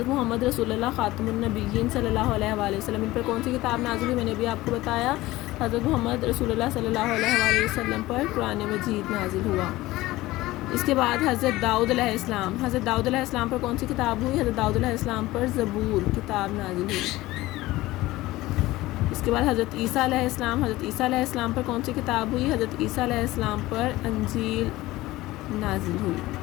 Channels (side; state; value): right; quieter; 18.0 dB